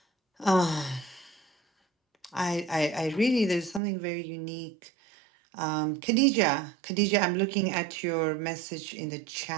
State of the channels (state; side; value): drops out; left; at 3.8 s